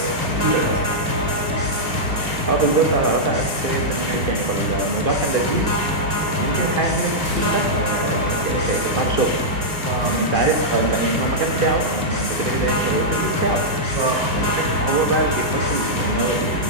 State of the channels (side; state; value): left; late; 2.5 ms